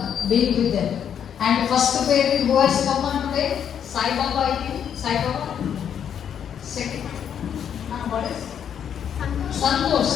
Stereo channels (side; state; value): right; quieter; 8.6 dB